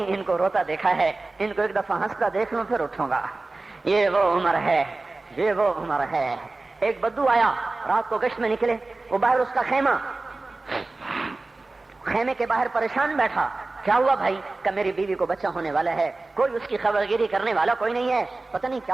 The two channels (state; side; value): quieter; left; 3.3 dB